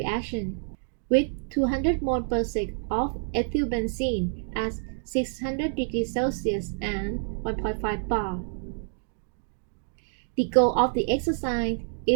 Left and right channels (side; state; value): left; silent; digital silence